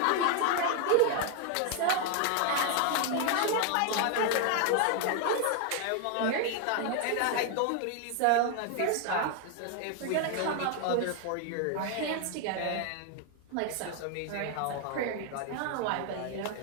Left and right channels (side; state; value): both; different; correlation 0.00